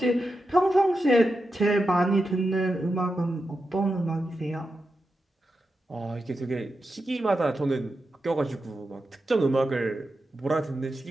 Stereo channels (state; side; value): normal; both; correlation 0.89